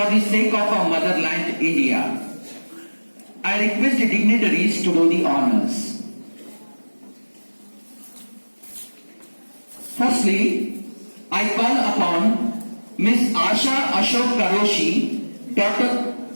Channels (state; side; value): inverted; both; correlation -1.00